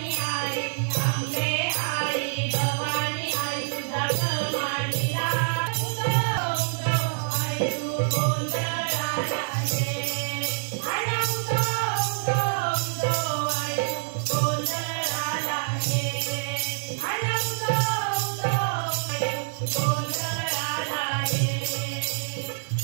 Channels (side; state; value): left; silent; 61 dB below the other